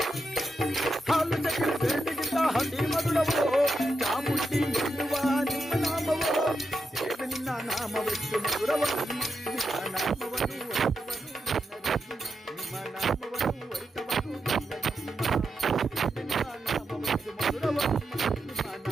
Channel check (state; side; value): normal; both; correlation 0.86